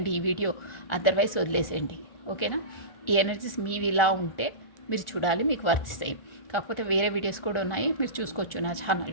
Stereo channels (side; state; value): right; late; 1.4 ms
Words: ఈ వీడియో, అదర్వైజ్ వదిలేసేయండి. ఓకేనా, ఈ ఎనర్జీస్ మీవి ఇలా ఉంటే మీరు చూడాలి, మీకు వర్తిస్తాయి. కాకపోతే వేరే వీడియోస్ కూడా ఉన్నాయి, మీరు చూసుకోవచ్చు నా